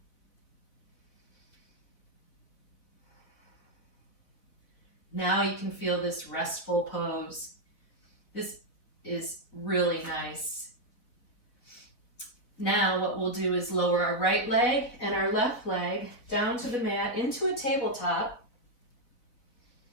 Now you can feel this restful pose. This is really nice. Now what we'll do is lower our right leg and our left leg down to the mat into a tabletop.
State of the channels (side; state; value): right; late; 4.1 ms